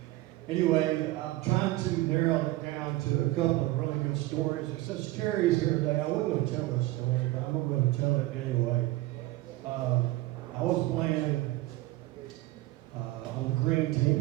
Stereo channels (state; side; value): quieter; left; 18.2 dB